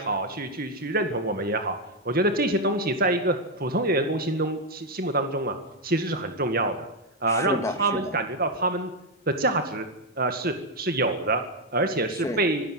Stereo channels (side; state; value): both; normal; correlation 0.04